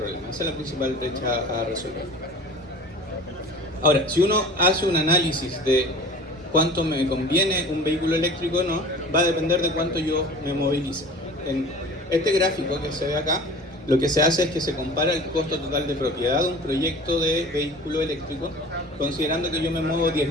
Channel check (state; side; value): normal; both; correlation 0.41